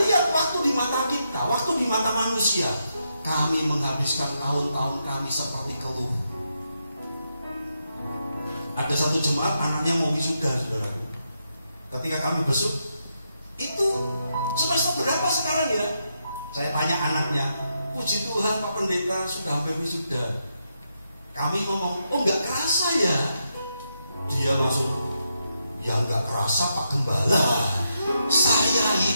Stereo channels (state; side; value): inverted; both; correlation -0.82